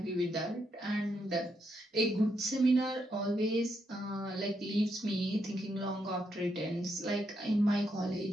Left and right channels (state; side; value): normal; both; correlation 0.79